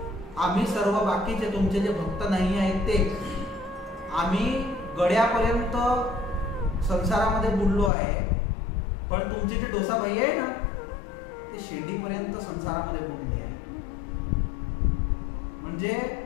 आम्ही सर्व बाकीचे तुमचे जे भक्त नाही आहेत ते, आम्ही गड्यापर्यंत संसारामध्ये बुडलो आहे, पण तुमचे जे डोसाभाई आहे ना ते शेंडीपर्यंत संसारामध्ये बुडले आहे. म्हणजे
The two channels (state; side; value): drops out; right; at 7.9 s